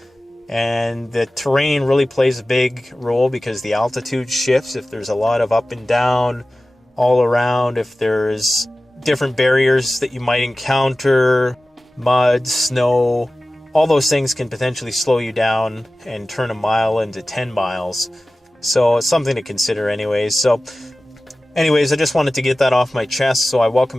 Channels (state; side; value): normal; both; correlation 0.96